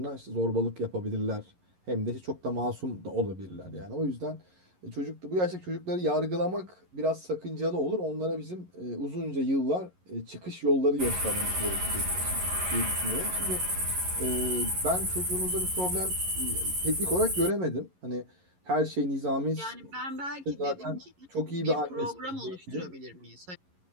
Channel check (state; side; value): late; left; 11 ms